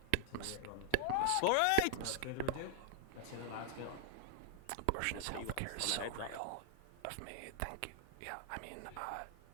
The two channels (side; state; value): both; different; correlation -0.01